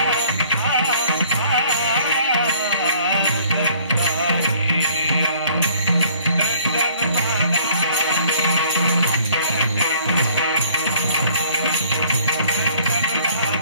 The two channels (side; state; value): both; inverted; correlation -0.57